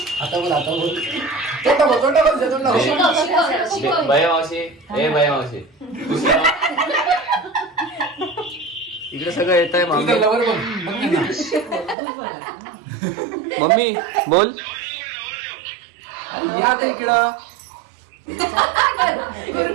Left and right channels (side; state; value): left; drops out; at 12.0 s